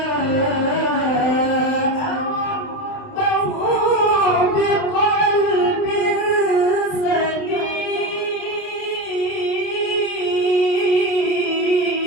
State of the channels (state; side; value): late; right; 28 ms